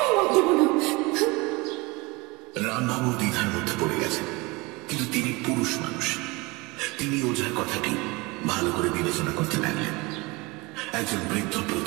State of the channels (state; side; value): quieter; left; 24.7 dB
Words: মত দেব না। রামবাবু দ্বিধার মধ্যে পড়ে গেছেন, কিন্তু তিনি পুরুষ মানুষ। তিনি ওঝার কথাটি ভালো করে বিবেচনা করতে লাগলেন। একজন বৃদ্ধ